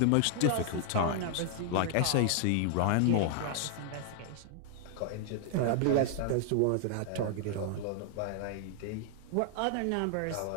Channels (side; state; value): both; different; correlation 0.00